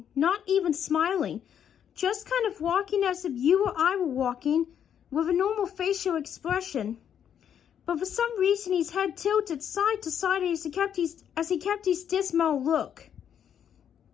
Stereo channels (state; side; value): quieter; right; 8.9 dB